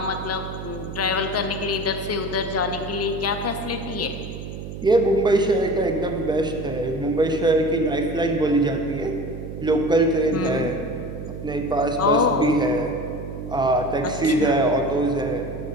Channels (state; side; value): noise; right; hum, 9 dB below the sound